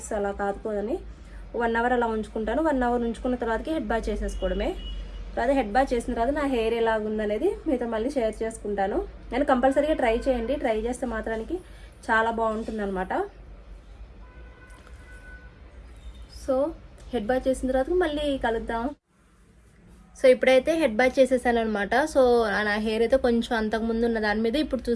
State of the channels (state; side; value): identical; both; correlation 1.00